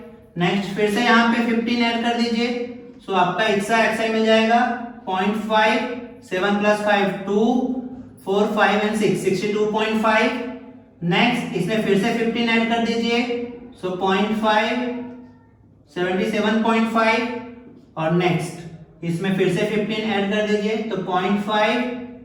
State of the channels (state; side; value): identical; both; correlation 1.00